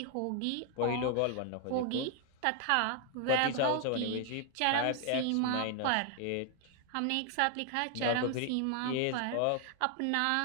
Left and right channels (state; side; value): different; both; correlation 0.00